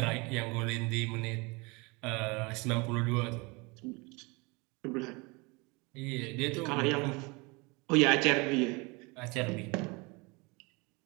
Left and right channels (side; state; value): left; quieter; 27.3 dB